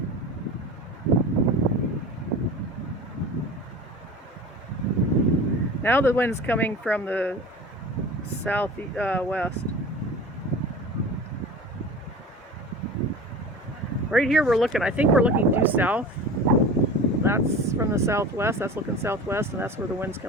Now the wind's coming from the southwest. Right here we're looking, I think we're looking due south. That's from the southwest, that's looking southwest, and that's where the wind's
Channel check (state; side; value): normal; both; correlation 0.35